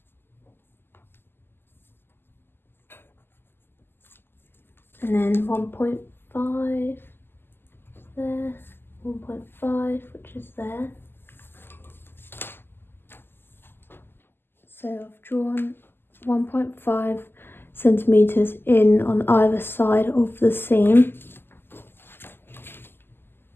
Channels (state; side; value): late; right; 0.10 ms